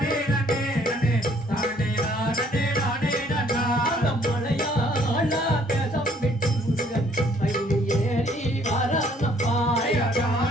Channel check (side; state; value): both; normal; correlation 0.62